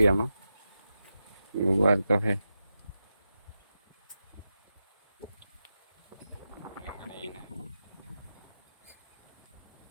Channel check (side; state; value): both; inverted; correlation -0.90